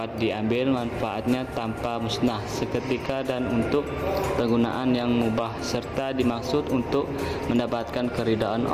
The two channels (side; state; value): both; identical; correlation 1.00